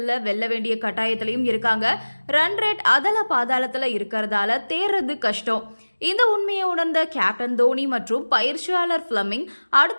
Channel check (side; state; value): both; inverted; correlation -1.00